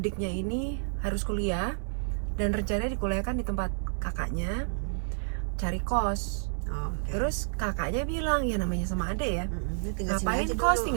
ini harus kuliah dan rencananya dikuliahkan di tempat kakaknya, cari kos. Okay. Terus kakaknya bilang, ya namanya sama adek ya, ngapain kos kos,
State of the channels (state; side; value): silent; left; 58 dB below the other